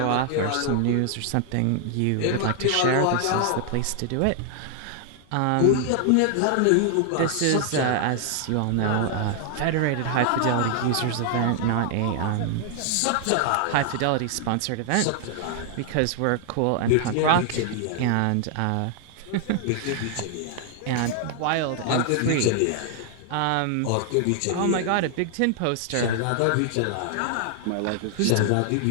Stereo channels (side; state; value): both; different; correlation 0.00